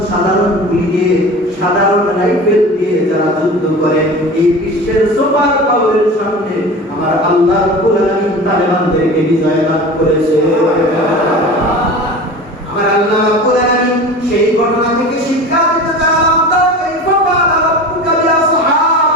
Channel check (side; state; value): both; normal; correlation 0.35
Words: সাধারণ গুলি দিয়ে, সাধারণ রাইফেল দিয়ে যারা যুদ্ধ করে, এই বিশ্বের সুপার পাওয়ারের সামনে আমার আল্লাহ রাব্বুল আলামিন তালেবানদেরকে বিজয় লাভ করেছে। আমার আল্লাহ রাব্বুল আলামিন সেই ঘটনা থেকে শিক্ষা দিতে চান, তারা কাইফা ফাআলা রাব্বুকা